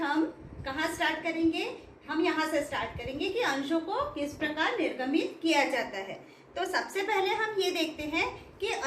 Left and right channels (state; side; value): identical; both; correlation 1.00